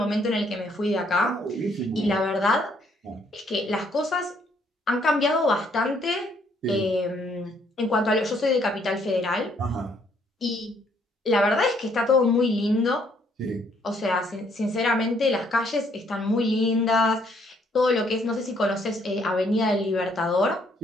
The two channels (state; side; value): normal; both; correlation 0.67